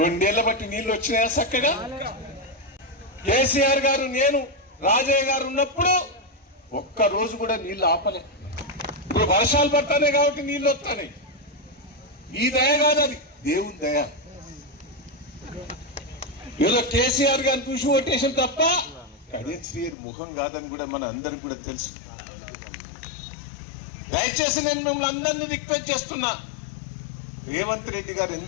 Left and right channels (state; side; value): drops out; right; at 20.0 s